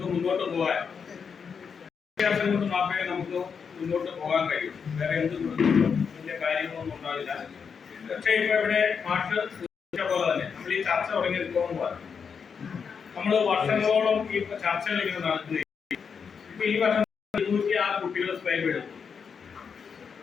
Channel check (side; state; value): right; quieter; 6.3 dB